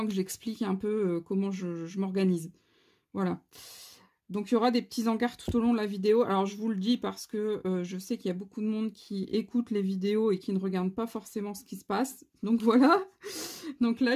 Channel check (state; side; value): identical; both; correlation 1.00